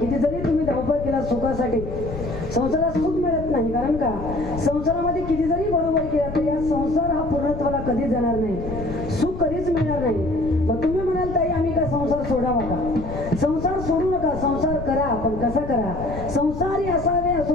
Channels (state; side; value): noise; left; rumble, 9 dB below the sound